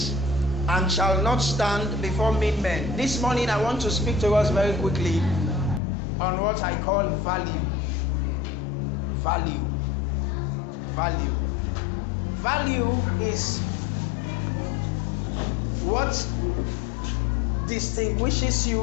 and shall not stand before mean men. This morning I want to speak to us very quickly on what I call value. Value. Value. Value is what distinguishes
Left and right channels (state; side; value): drops out; right; at 5.8 s